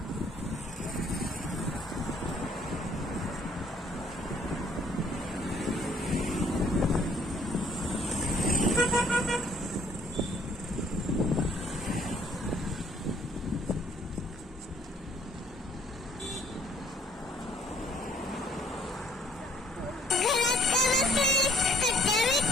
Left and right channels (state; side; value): normal; both; correlation 0.62